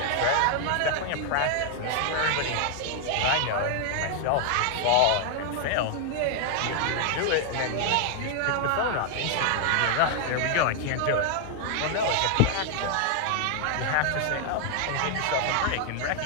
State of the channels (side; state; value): both; different; correlation 0.00